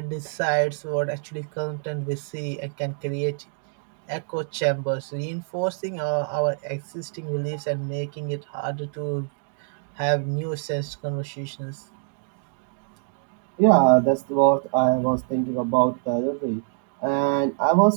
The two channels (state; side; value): silent; left; 57 dB below the other